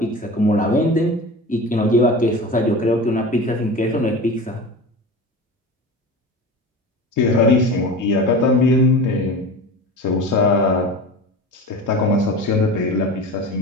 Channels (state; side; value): normal; both; correlation 0.32